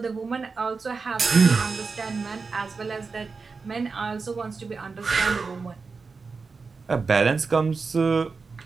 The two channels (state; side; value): quieter; left; 4.6 dB